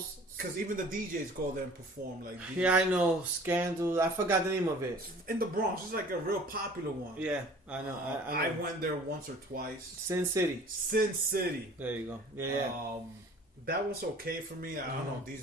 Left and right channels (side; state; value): both; normal; correlation 0.48